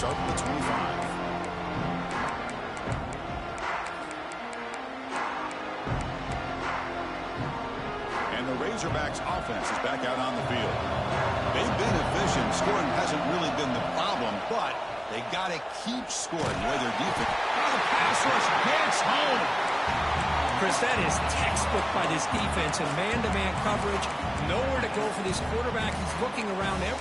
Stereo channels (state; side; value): identical; both; correlation 1.00